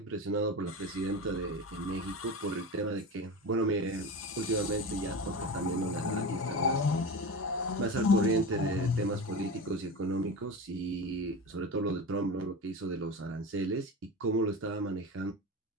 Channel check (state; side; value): normal; both; correlation 0.26